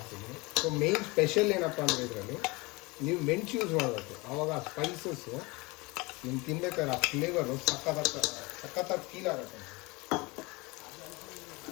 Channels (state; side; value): quieter; right; 24.9 dB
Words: ಸೊ ಮೇನ್ ಸ್ಪೆಷಲ್ ಏನಪ್ಪ ಅಂದರೆ ಇದರಲ್ಲಿ ನೀವು ಮೆಣಸು ಯೂಸ್ ಮಾಡಬೇಕು. ಆವಾಗ ಆ ಸ್ಪೈಸಸ್ಸು ನಿಮ್ಗೆ ತಿನ್ಬೇಕಾದ್ರೆ ಆ ಫ್ಲೇವರು ಸಖತ್ತಾಗಿ ಫೀಲ್ ಆಗುತ್ತೆ.